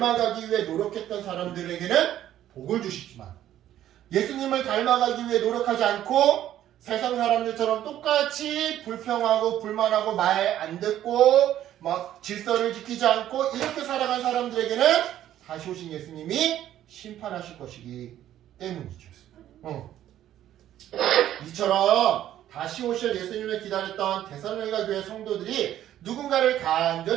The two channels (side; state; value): left; quieter; 12.1 dB